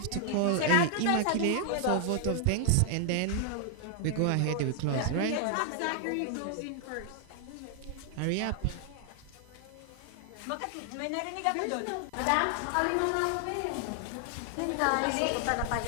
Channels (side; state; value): both; different; correlation 0.00